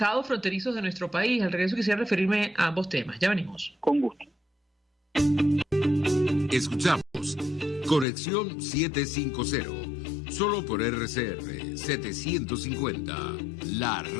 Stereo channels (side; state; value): right; drops out; at 8.1 s